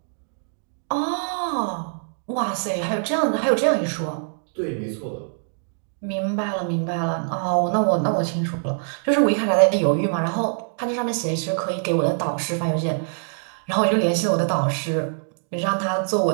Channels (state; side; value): silent; left; digital silence